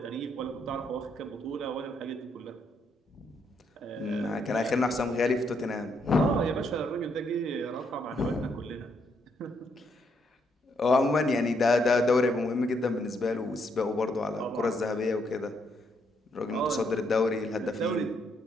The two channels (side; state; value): both; normal; correlation 0.75